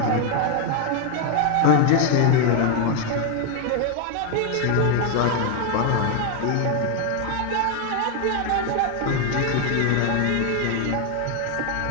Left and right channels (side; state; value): both; different; correlation 0.01